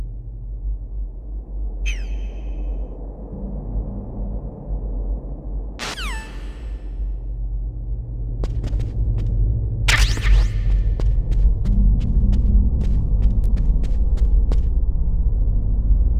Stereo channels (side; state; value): both; identical; correlation 1.00